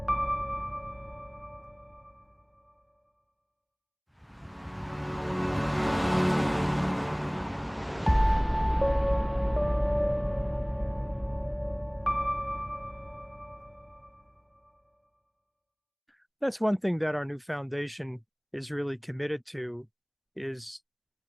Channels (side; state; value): both; identical; correlation 1.00